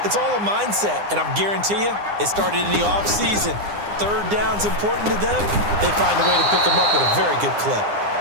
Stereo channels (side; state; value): left; late; 9.8 ms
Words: It's all a mindset, and I'm guarantee you, it started in the offseason. 3rd down's important to them. They find a way to pick them up at a very good clip.